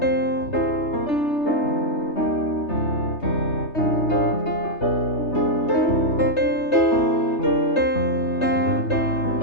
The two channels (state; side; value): late; right; 3.3 ms